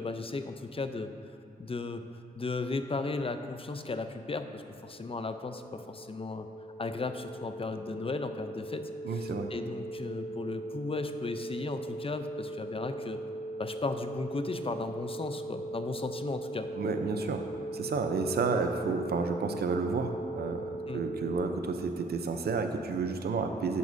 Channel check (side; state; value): both; normal; correlation 0.57